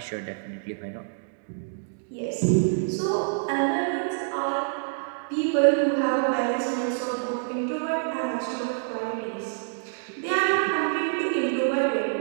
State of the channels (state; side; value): silent; left; digital silence